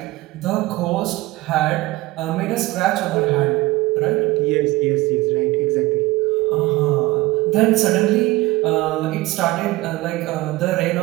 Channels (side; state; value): left; quieter; 19.2 dB